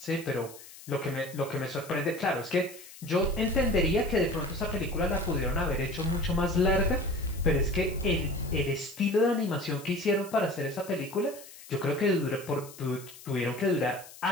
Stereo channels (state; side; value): noise; left; hiss, 18 dB below the sound